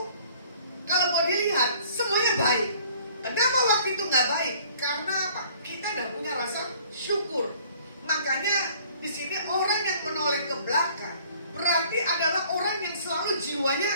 kalau mau dilihat semuanya baik. Kenapa waktu itu nggak baik? Karena apa? Kita tidak punya rasa syukur. Makanya di sini orang yang menoleh ke belakang berarti adalah orang yang selalu jiwanya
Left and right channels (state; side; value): inverted; both; correlation -0.55